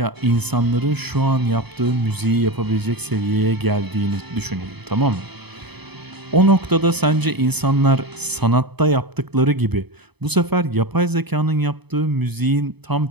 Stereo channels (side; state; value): left; late; 0.98 ms